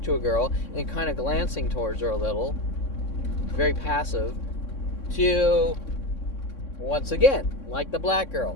to a girl and kind of glancing towards her a little, very passive, to, once again, like the black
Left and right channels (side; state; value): right; late; 3.6 ms